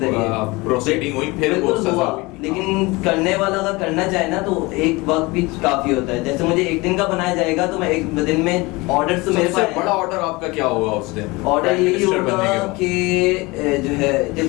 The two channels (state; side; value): quieter; right; 23.6 dB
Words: प्रोसीडिंग हुई, फिर वो सजा हुई। लेकिन करने वाला अगर करना चाहे ना तो एक वक्त भी काफी होता है। जैसे मुझे एक दिन का बनाया जाएगा तो मैं एक दिन में ऑर्डर तो मेरे पास बड़ा ऑर्डर आपका क्या होगा उस दिन? ऑर्डर यही होगा कि जो है